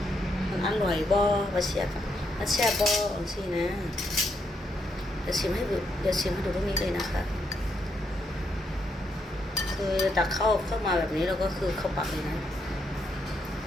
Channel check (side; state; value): both; normal; correlation 0.78